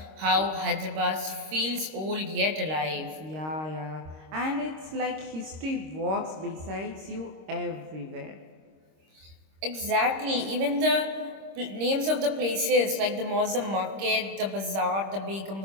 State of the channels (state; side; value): late; left; 26 ms